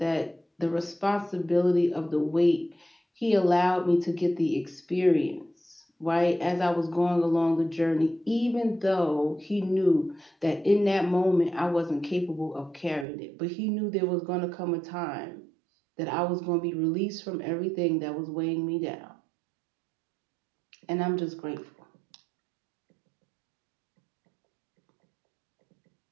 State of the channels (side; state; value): left; drops out; at 13.1 s